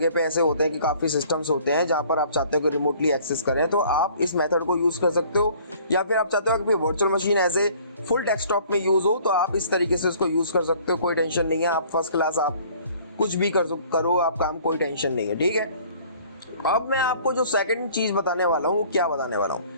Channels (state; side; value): inverted; both; correlation -0.54